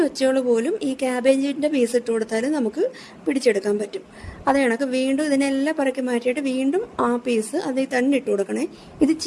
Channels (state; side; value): identical; both; correlation 1.00